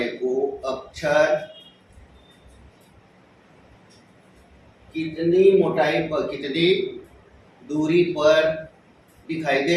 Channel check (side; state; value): both; identical; correlation 1.00